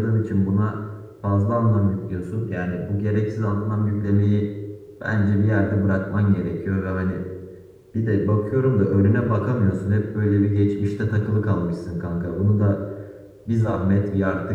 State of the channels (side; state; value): both; identical; correlation 1.00